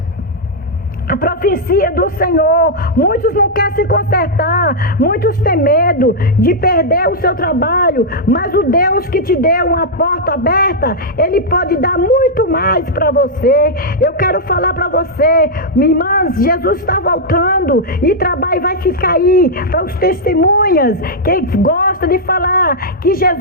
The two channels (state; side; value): normal; both; correlation -0.06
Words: a profecia do Senhor. Muitos não querem se consertar, muitos têm medo de perder o seu trabalho, mas o Deus que te deu uma porta aberta, Ele pode dar muito mais para você. Eu quero falar para você, minha irmã, Jesus está voltando e trabalho vai ficar aí para os testemunhas que gostam de falar que